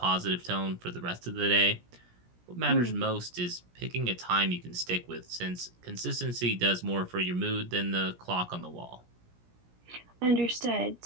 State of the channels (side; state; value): left; late; 17 ms